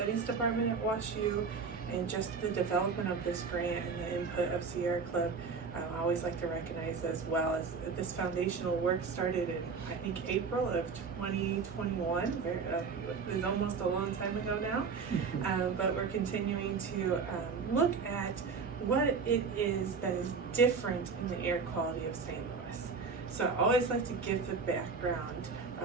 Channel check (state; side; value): quieter; left; 5.2 dB